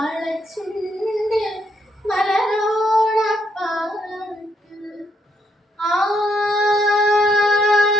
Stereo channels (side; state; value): both; normal; correlation 0.74